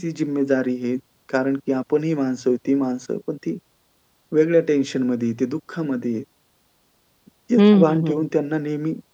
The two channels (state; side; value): identical; both; correlation 1.00